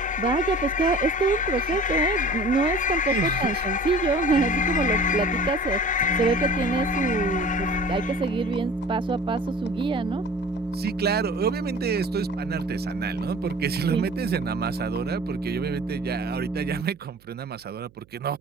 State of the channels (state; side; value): noise; right; hum, 29 dB below the sound